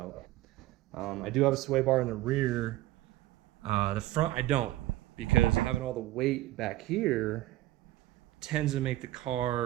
I do have a sway bar in the rear. The front I don't, because having all the weight back here tends to make the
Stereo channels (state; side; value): quieter; left; 16.2 dB